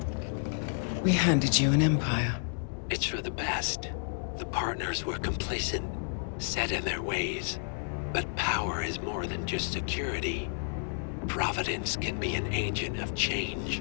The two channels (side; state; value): right; silent; digital silence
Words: We handed you an empire. It's for the best. The partners were complacent, set in their ways. But power is more than just security. Providence can be an agent of